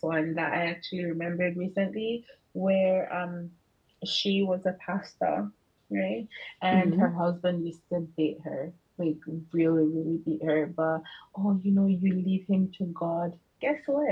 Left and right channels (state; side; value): identical; both; correlation 1.00